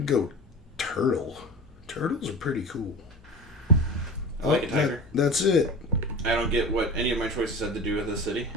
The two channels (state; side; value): normal; both; correlation 0.33